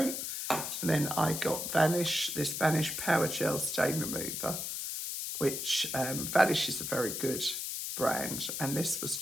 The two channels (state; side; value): noise; left; hiss, 4 dB below the sound